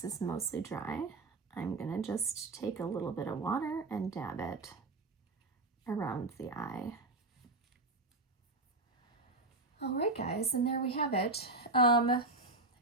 is mostly dry, I'm gonna just take a little bit of water and dab it around the eye. All right, guys, and there we have it.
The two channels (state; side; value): quieter; left; 3.1 dB